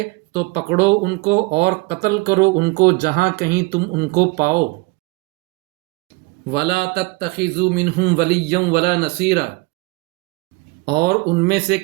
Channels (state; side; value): quieter; left; 24.9 dB